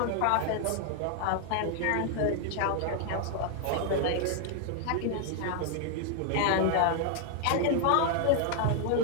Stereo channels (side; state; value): both; different; correlation 0.00